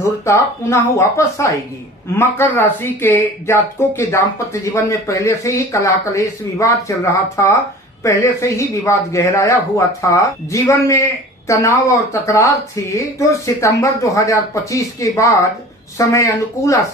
पुनः वापस आएगी। मकर राशि के जातकों के दाम्पत्य जीवन में पहले से ही कलह कलेश विवाद चल रहा था, पहले से ही विवाद गहराया हुआ था, जीवन में तनाव और तकरार थी। तो सितंबर 2025 के बाद समय अनुकूल आ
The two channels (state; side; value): normal; both; correlation 0.42